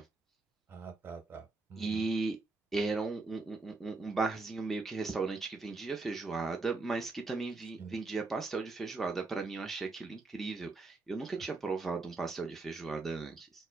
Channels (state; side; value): quieter; left; 3.6 dB